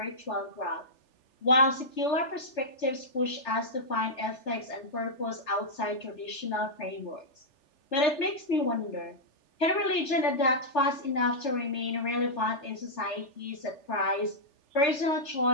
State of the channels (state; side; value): late; right; 3.4 ms